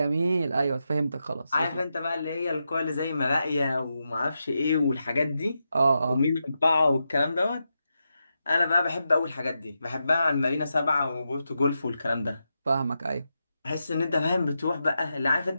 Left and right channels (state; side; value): inverted; both; correlation -0.87